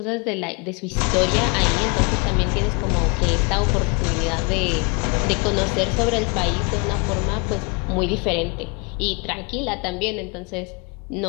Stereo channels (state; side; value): quieter; right; 32.0 dB